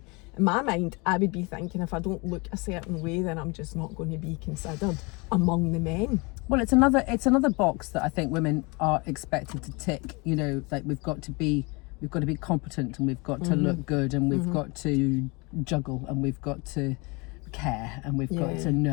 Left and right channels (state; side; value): quieter; right; 28.0 dB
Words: my mind, I would be thinking if I don't look a certain way, then I'm just not going to be considered among the men. Well, it's another box that I think women are expected to tick. You know, like we've got to be competent, and we've got to look good, and we've got to juggle, and we've got to care, and we've got to